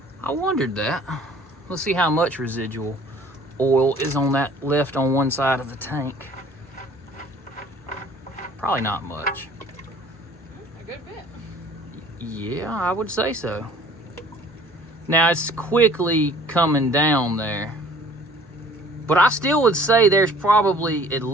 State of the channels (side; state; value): both; normal; correlation 0.52